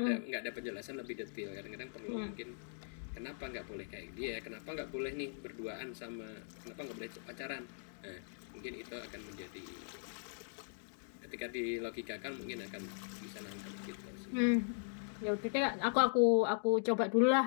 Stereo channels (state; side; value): silent; right; digital silence